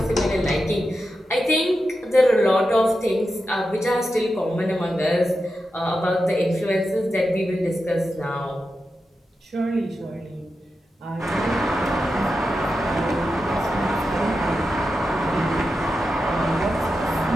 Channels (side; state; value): both; normal; correlation 0.89